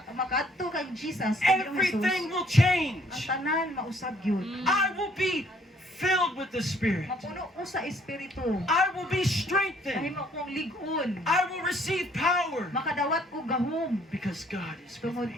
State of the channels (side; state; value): both; normal; correlation 0.63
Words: makaadto kang Jesus, kay Ginoong everything Jesus, will ang change. tanan mausab gyud. I will be filled with the Spirit. Mapuno ko sa espiritu. I will be strengthened. Kahimo kong ligon. I will receive power Makadawat ko gahom. because God is with Tungod